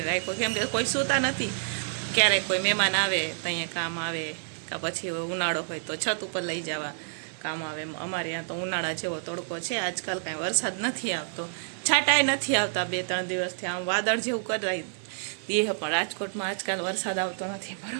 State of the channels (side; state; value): left; silent; 59 dB below the other